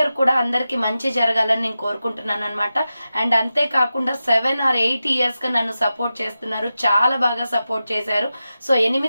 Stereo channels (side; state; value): both; inverted; correlation -0.92